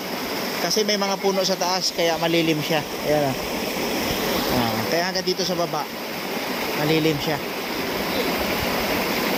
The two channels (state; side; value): identical; both; correlation 1.00